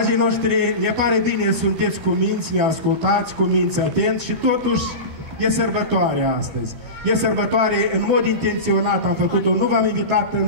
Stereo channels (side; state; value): left; late; 12 ms